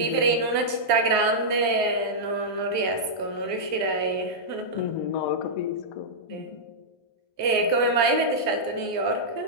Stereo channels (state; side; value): late; right; 1.2 ms